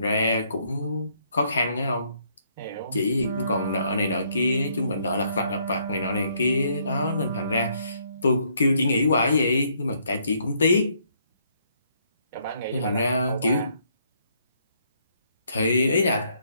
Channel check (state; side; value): inverted; both; correlation -0.69